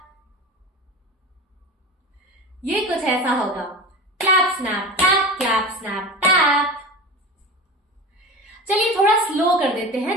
ये कुछ ऐसा होगा, क्लैप स्नैप टैप। चलिए थोड़ा स्लो कर देते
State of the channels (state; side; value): normal; both; correlation 0.30